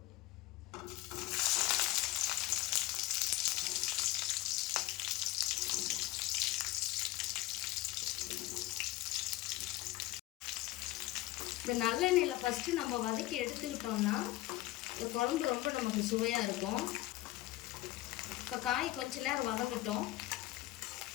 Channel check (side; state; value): right; quieter; 17.3 dB